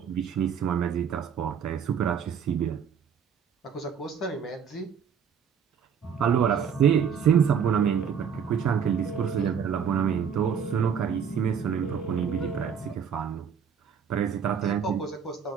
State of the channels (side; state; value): left; quieter; 7.3 dB